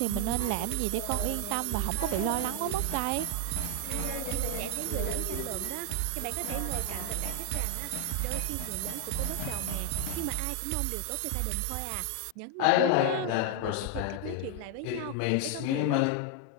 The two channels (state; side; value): different; both; correlation 0.00